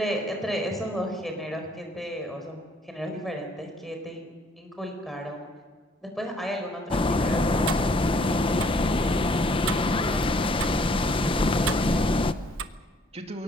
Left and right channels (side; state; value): both; normal; correlation 0.62